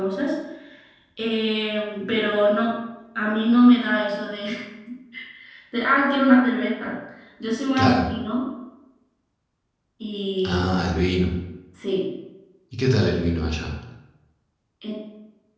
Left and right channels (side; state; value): both; identical; correlation 1.00